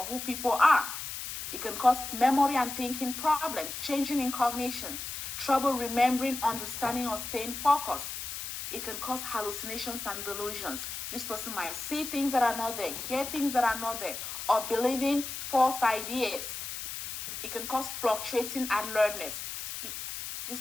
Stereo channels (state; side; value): noise; left; hiss, 7 dB below the sound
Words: who people are. It can cause memory and thinking problems, changing in cognition, trouble remembering, understanding, or staying focused. It can cause hallucinations and delusions. This person might see things that are not there, hear things that are not there, or believing false ideas. It can cause fluctuating alertness. This